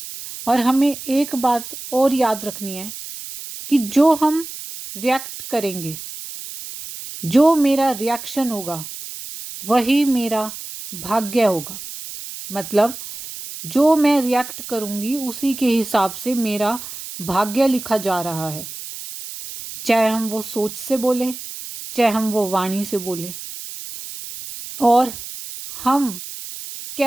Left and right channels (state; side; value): noise; right; hiss, 11 dB below the sound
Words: और हमें एक बात और याद रखनी है कि जो हम रिएक्ट करेंगे, जो मेरा रिएक्शन होगा वही मेरा भाग्य होगा। मतलब जो मैं रिएक्ट करूंगी उसी के हिसाब से मेरा भाग्य लिखा जा रहा है। चाहे हम वो सोच से बोलें, चाहे हम वो वाणी से बोलें। और हम